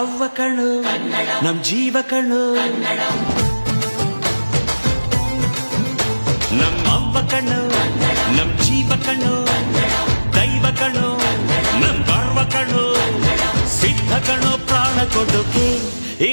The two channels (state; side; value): inverted; both; correlation -1.00